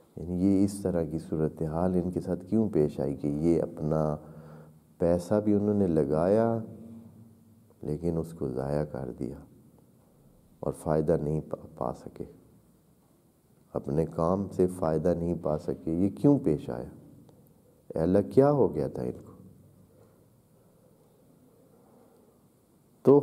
یعنی یہ اس طرح کی صورتحال ان کے ساتھ کیوں پیش آئی کہ یہ اپنا پیسہ بھی انہوں نے لگایا لیکن اس کو ضائع کر دیا اور فائدہ نہیں پا سکے، اپنے کام سے فائدہ نہیں پا سکے. یہ کیوں پیش آیا؟ اے اللہ کیا ہو گیا تھا ان کو؟ تو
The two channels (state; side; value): identical; both; correlation 1.00